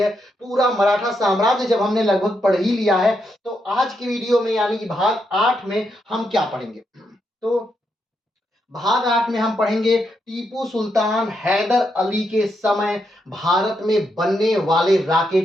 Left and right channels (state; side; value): normal; both; correlation 0.81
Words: पूरा मराठा साम्राज्य जब हमने लगभग पढ़ ही लिया है तो आज की वीडियो में यानी कि भाग 8 में हम क्या पढ़ेंगे। तो भाग 8 में हम पढ़ेंगे टीपू सुल्तान हैदर अली के समय भारत में बनने वाले